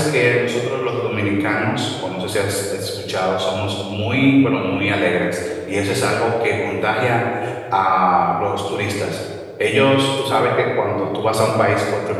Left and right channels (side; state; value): both; identical; correlation 1.00